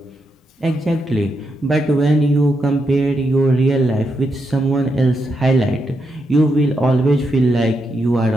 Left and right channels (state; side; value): normal; both; correlation 0.83